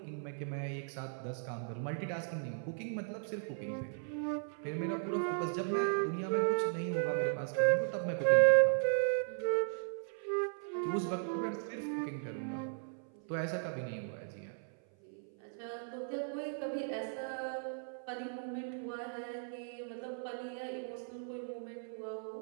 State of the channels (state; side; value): silent; left; 53 dB below the other